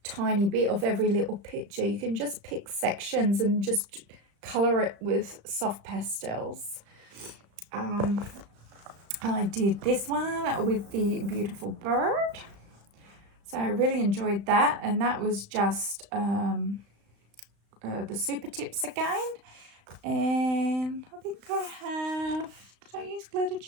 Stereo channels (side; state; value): left; late; 35 ms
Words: tiny bit of every little picture. You can just pick sections and just colour it with soft pastels. I did this one with the beautiful bird. So I really enjoyed that. And that was just the super tips again. And I think I have, did I use glitter